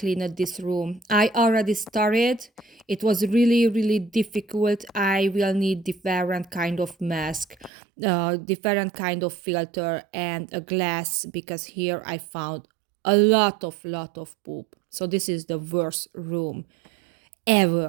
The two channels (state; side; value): drops out; left; at 7.7 s